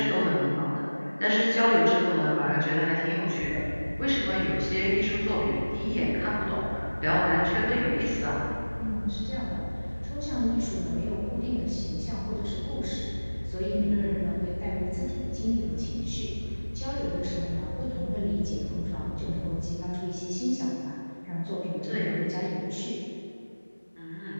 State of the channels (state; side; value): inverted; both; correlation -1.00